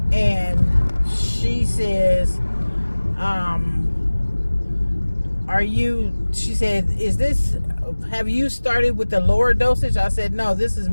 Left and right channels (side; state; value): both; inverted; correlation -1.00